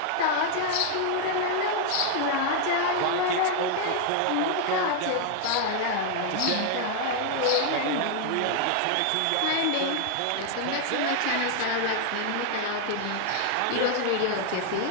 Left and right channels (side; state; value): both; different; correlation 0.00